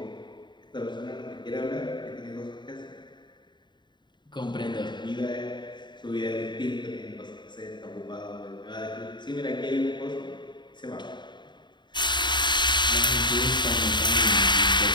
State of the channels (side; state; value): right; late; 0.22 ms